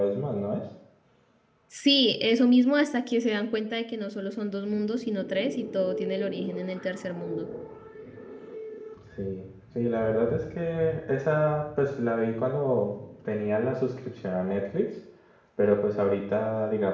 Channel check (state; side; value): identical; both; correlation 1.00